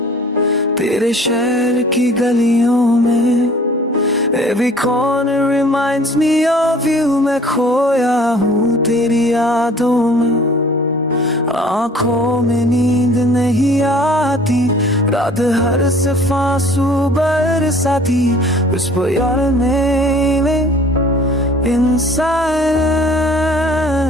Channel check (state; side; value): normal; both; correlation 0.51